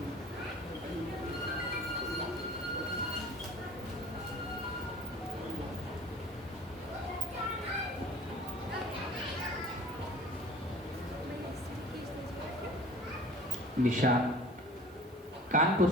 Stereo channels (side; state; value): right; noise; hiss, 27 dB below the sound